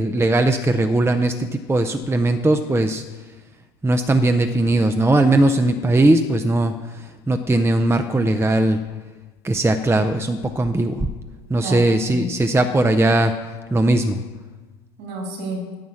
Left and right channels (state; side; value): normal; both; correlation 0.84